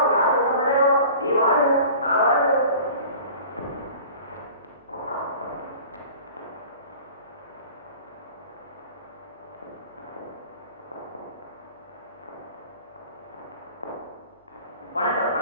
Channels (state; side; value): inverted; both; correlation -0.43